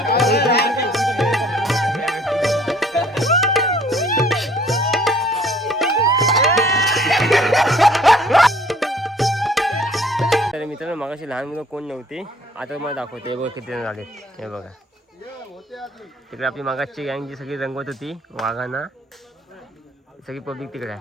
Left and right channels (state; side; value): normal; both; correlation 0.57